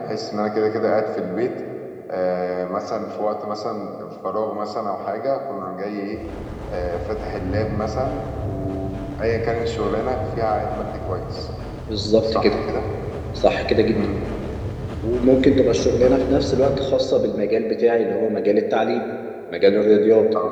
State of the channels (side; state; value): both; identical; correlation 1.00